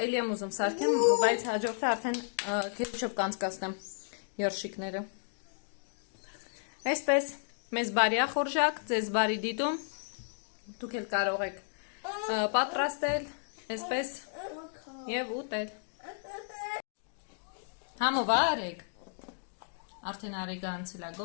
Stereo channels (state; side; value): silent; right; digital silence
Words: էլի եմ ուզում սարքեմ, բայց հաջորդը արդեն քեչոպ կանցկացնեմ երշիկները։ Այսպես, մեզ բարի ախորժակ, ձեզ բարի դիտում, դուք էլ կարող եք պատրաստել, այսպես և ուտել։ Համովա արեք, արդեն արեգը անցել է